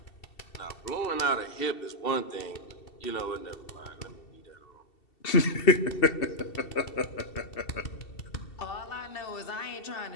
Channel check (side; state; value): right; late; 2.7 ms